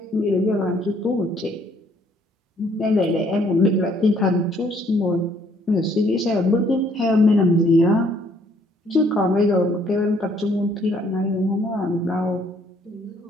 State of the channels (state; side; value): normal; both; correlation 0.64